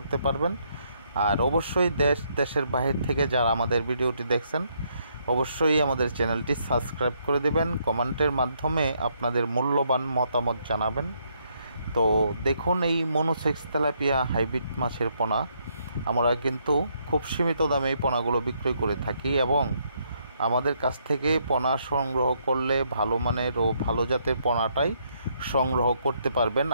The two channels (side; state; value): both; inverted; correlation -0.73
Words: পারবেন। আর অবশ্যই দেশের বাহির থেকে যারা আমাদের ভিডিওটি দেখছেন অবশ্যই আমাদের চ্যানেলটি সাবস্ক্রাইব করে দেবেন, কমেন্টের মাধ্যমে আপনাদের মূল্যবান মতামত জানাবেন। তো দেখুন, এই মনোসেক্স তেলাপিয়া হাইব্রিড মাছের পোনা আমরা কিন্তু খুব সীমিত দামে এই পোনাগুলো বিক্রয় করে থাকি এবং আমাদের কাছ থেকে পোনা সংগ্রহ করলে ভালো মানের ও ভালো জাতের পোনাটাই সংগ্রহ করতে পারবেন।